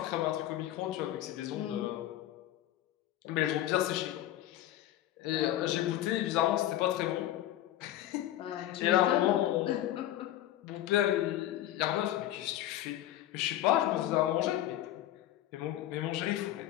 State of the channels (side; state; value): right; quieter; 13.4 dB